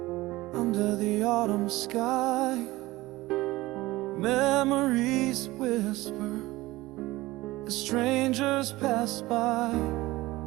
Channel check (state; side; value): quieter; left; 19.0 dB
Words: under the autumn sky. Memories whisper as strangers pass by.